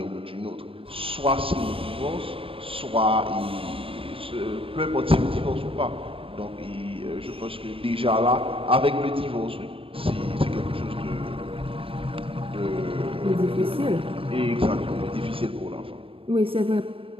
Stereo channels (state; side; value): late; left; 0.26 ms